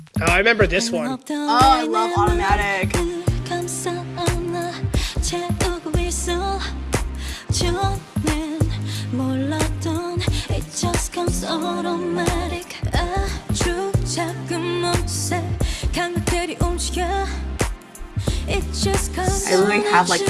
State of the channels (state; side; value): identical; both; correlation 1.00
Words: Oh, I remember this one. Oh, I love Automatic. I literally have like